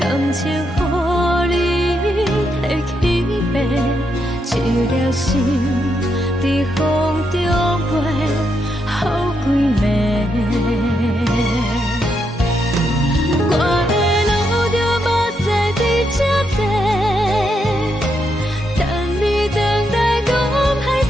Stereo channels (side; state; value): both; normal; correlation 0.80